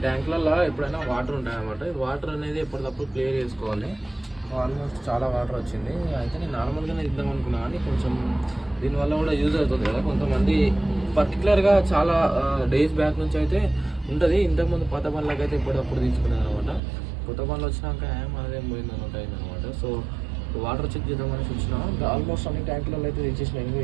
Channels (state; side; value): drops out; left; at 16.8 s